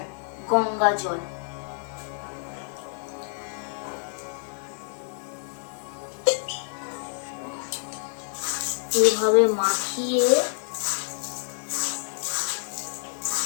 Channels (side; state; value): right; silent; digital silence